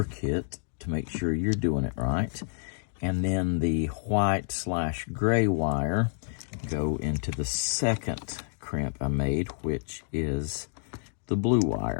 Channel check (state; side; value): silent; right; digital silence